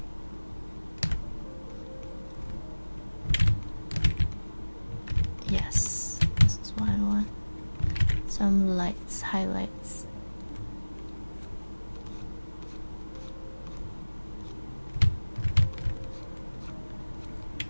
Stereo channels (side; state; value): both; inverted; correlation -1.00